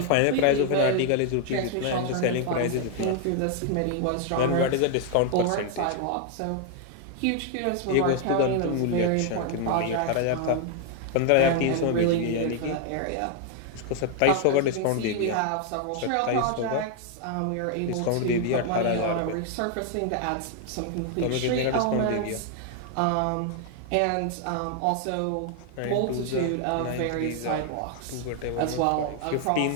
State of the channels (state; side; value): different; both; correlation 0.00